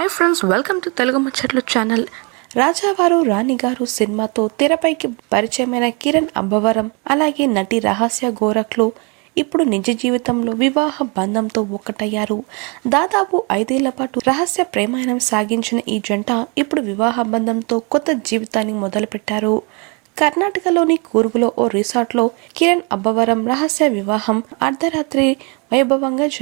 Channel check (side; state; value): left; quieter; 31.9 dB